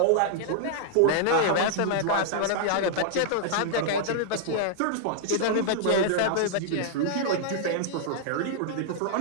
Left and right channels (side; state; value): both; different; correlation -0.01